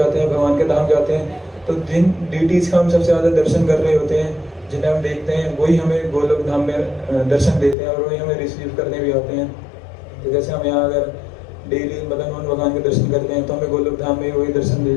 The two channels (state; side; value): drops out; right; at 7.8 s